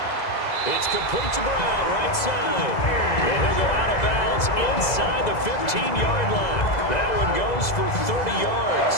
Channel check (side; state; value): right; late; 2.0 ms